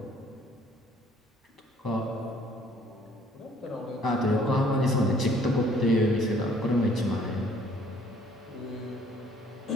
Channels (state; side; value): normal; both; correlation 0.59